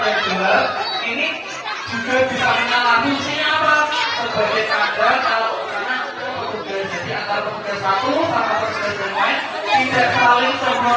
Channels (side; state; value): both; identical; correlation 1.00